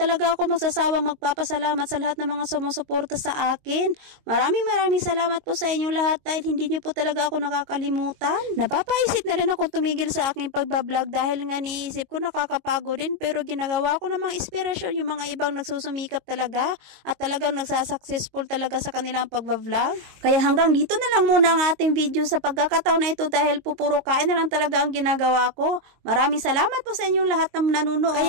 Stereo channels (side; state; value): left; late; 22 ms